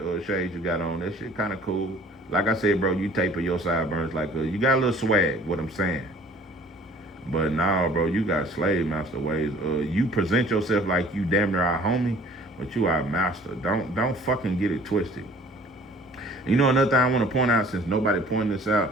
shades you got on. That shit kind of cool. Like I said, bro, you taper your sideburns like you got a little swag, what I'm saying. But nah, bro, you got slave master ways. You present yourself like you damn near our homie, but you our master. Don't fucking get it twisted. You know another thing I want to point out, since nobody pointed this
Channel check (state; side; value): normal; both; correlation 0.52